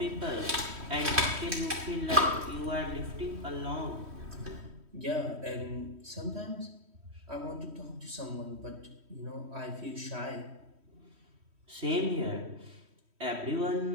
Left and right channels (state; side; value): late; left; 3.1 ms